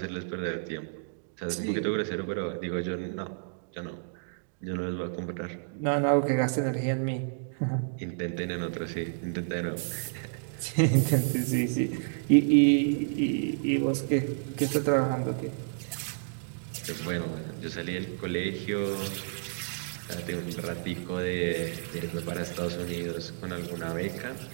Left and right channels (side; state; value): left; silent; digital silence